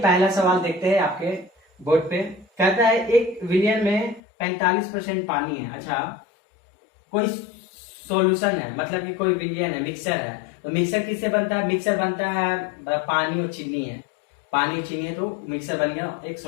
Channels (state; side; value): drops out; right; at 4.2 s